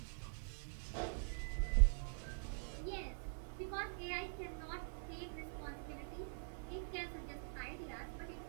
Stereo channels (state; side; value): silent; left; digital silence